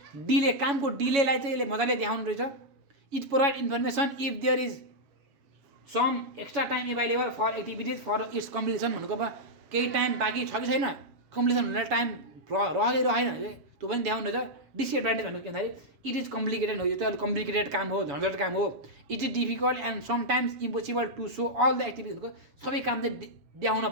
डिले कामको डिलेलाई चाहिँ यसले मजाले देखाउनु रहेछ। It provide information if there is some extra time available for activities for its completion भनेको अब केही टाइम बाँकी छ कि छैन कम्प्लिसन हुने टाइम रहेन त्यो पनि देखाउनु रहेछ। डिसएडभान्टेज भनेको के भन्दाखेरि इट इज कम्प्लिकेटेड हो यो चाहिँ अलिक कम्प्लिकेटेड काम हो झन्झट काम हो। It is difficult and sometimes impossible to show all the activities भनेको सबै काम चाहिँ देखाउन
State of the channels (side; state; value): left; late; 7.1 ms